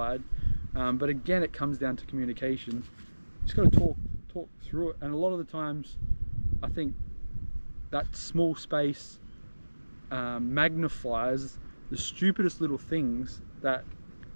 but again, it comes down to communication. You just got to talk through it, and a lot of the times I think that small space magnifies the stupidest little things that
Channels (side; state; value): both; inverted; correlation -1.00